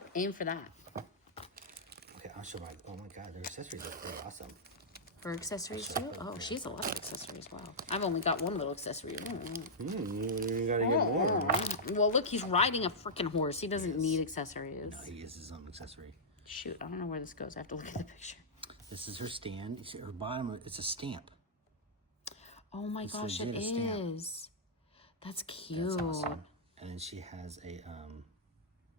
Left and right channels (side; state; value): both; normal; correlation -0.10